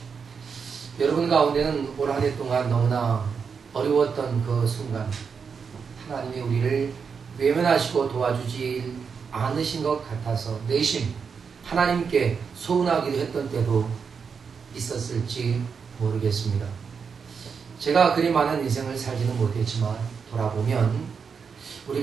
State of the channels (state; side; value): quieter; left; 6.0 dB